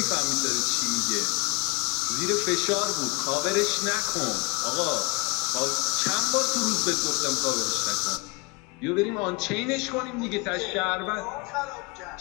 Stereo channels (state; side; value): quieter; right; 27.9 dB